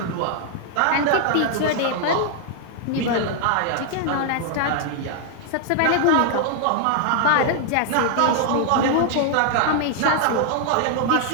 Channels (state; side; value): different; both; correlation 0.00